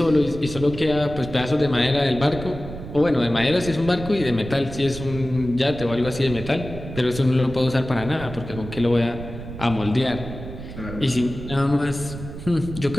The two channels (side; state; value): right; noise; rumble, 11 dB below the sound